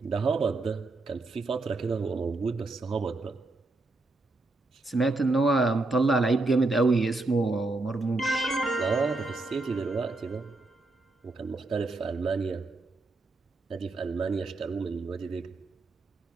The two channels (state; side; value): quieter; left; 3.2 dB